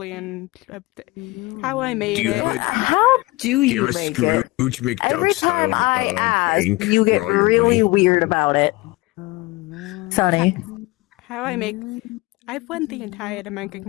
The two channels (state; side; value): quieter; right; 21.8 dB